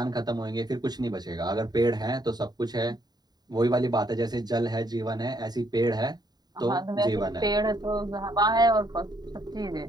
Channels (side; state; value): left; late; 0.20 ms